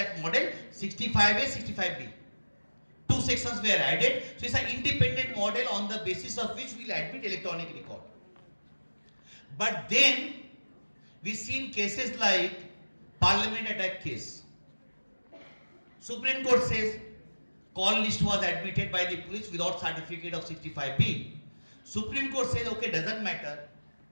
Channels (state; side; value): inverted; both; correlation -1.00